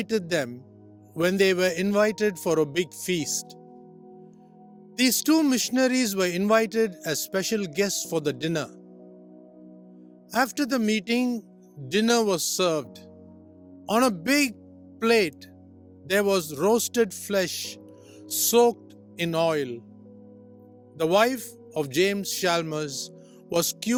them when they were invited for a big feast. These two missionaries were invited as special guests for the dinner. After the meeting, dinner was served. On a big plate, there was roasted flesh soaked in oil. The wife of James Chalmers was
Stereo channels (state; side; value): identical; both; correlation 1.00